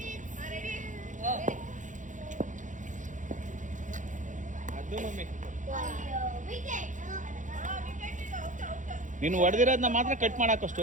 ಅದು ಮಮ್ಮಿ ನೀನು ಹೊಡೆದಿರೋದನ್ನ ಮಾತ್ರ ಕಟ್ ಮಾಡಾಕೋ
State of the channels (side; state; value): left; late; 0.36 ms